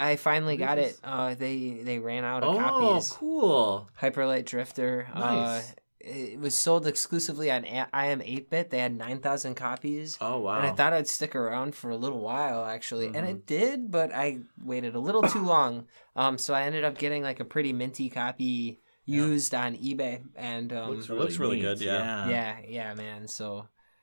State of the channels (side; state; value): both; inverted; correlation -1.00